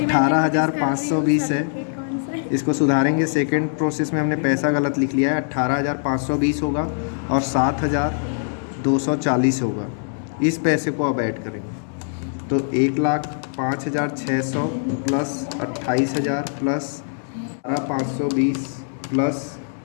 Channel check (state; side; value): silent; right; 64 dB below the other